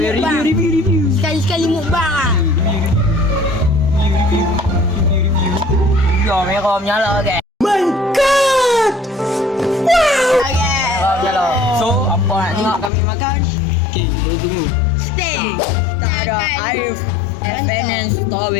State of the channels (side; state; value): right; drops out; at 12.9 s